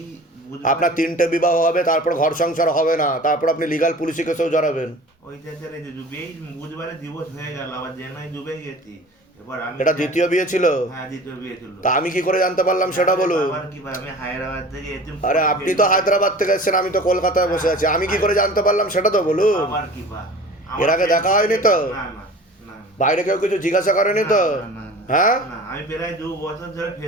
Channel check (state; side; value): normal; both; correlation 0.41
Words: আপনার 3টে বিবাহ হবে, তারপর ঘর সংসার হবে না, তারপর আপনি লিগাল পুলিশি কেসেও জড়াবেন। ওইটা ছেড়ে যে ডুবেই বুধবারে দিবস হয়ে গেল, আবার জেনাই ডুবে গেছি। এবার আমি এটা দ্বিতীয় বিয়ে ছিল? হ্যাঁ, দ্বিতীয় বিয়ে ছিল। তা আমি কি করে জানতে পারলাম সেটা বলুন। আবার কি ভাই, আমি হায়দ্রাবাদ থেকে এসেছি। আরে আপনি তো হায়দ্রাবাদ থেকে এসেছেন, আমি তো কলকাতায় বসে আছি, আমি কি করে জানতে পারলাম সেটা তো বলুন। আবার কি ভাই, এর আগে দেখা হয়নি তো? না না না। বাইরে কেউ কিছু জিজ্ঞাসা করেনি তো? না, না, না, হ্যাঁ, না, আমি প্রায় 2 বছর ধরে